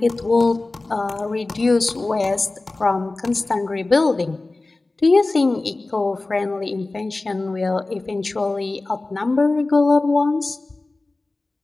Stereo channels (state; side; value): quieter; right; 3.2 dB